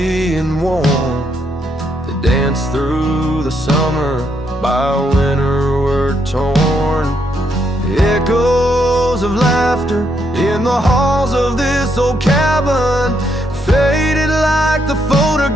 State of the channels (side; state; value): both; normal; correlation 0.76